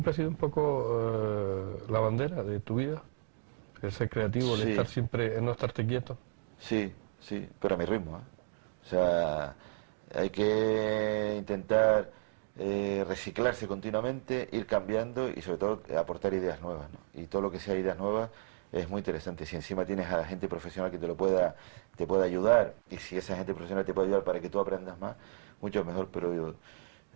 ha sido un poco la bandera de tu vida? El ser creativo, el estar siempre, el no estarte quieto. Sí, pero a mi ritmo, ¿eh? O sea, hay que intentar reciclarse continuamente, ir cambiando y sobre todo aportar ideas nuevas, ¿no? Y todo lo que sea ideas nuevas es muy interesante. Si encima tienes a gente profesional que te pueda ayudar, y si esa gente profesional te puede ayudar para que tú aprendas más, mucho mejor. Pero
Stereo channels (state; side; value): silent; left; digital silence